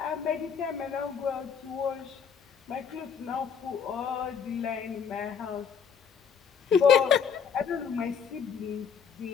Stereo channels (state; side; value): quieter; right; 6.8 dB